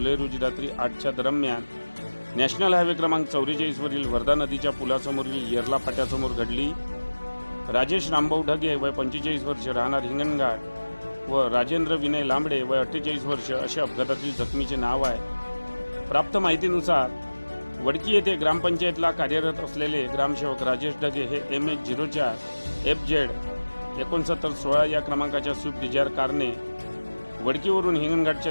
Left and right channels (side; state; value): both; inverted; correlation -1.00